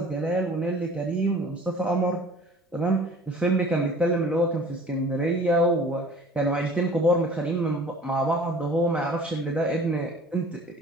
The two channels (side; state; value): both; normal; correlation 0.47